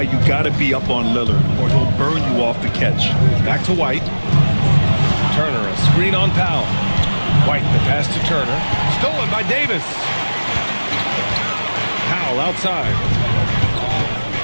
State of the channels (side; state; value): both; inverted; correlation -1.00